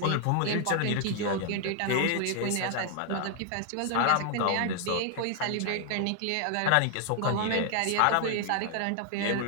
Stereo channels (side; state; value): both; different; correlation 0.00